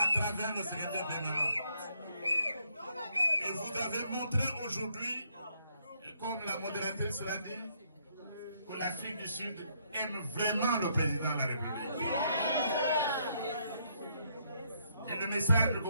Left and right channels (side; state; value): both; inverted; correlation -0.72